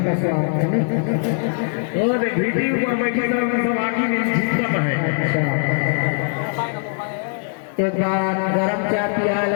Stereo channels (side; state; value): right; silent; 65 dB below the other